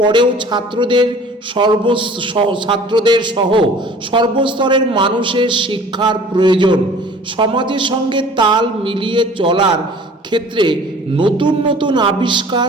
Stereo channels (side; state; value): both; normal; correlation 0.48